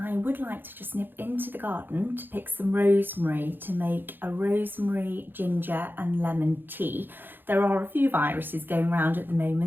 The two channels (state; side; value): late; left; 0.097 ms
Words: would like to just nip into the garden to pick some rosemary to make a rosemary, ginger and lemon tea. There are a few viruses going around at the